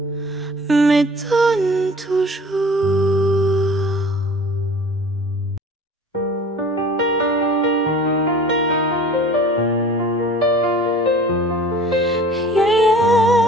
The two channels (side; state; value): both; normal; correlation 0.45